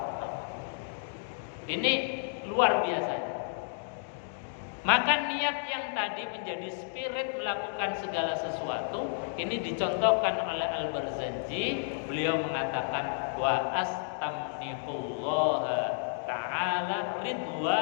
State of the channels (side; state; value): right; silent; digital silence